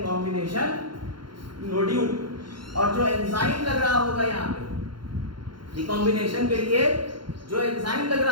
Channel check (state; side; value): late; left; 0.72 ms